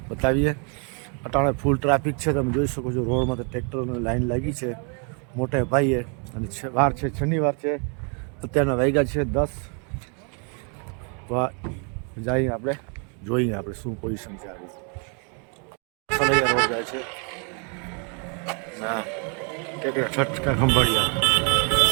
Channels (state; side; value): quieter; left; 38.2 dB